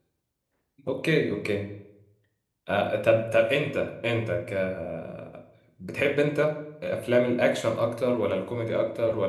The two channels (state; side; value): identical; both; correlation 1.00